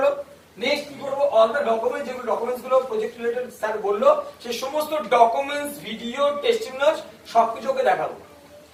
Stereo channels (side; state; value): both; identical; correlation 1.00